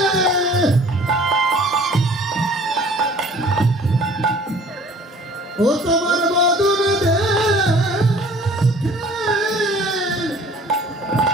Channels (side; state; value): both; normal; correlation 0.50